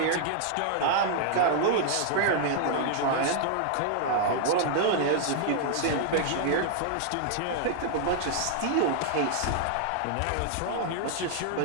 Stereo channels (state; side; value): different; both; correlation 0.00